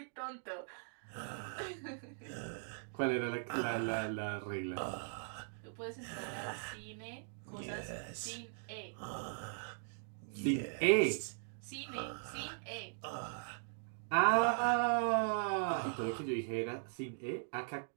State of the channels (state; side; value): silent; left; digital silence